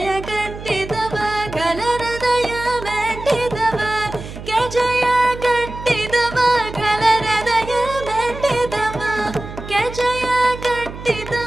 ಗಟ್ಟಿದವ ಖಲ ಹೃದಯ ಮೆಟ್ಟಿದವ ಜಯ ಗಟ್ಟಿದವ ಖಲ ಹೃದಯ ಮೆಟ್ಟಿದವ ಜಯ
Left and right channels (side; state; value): right; noise; hum, 12 dB below the sound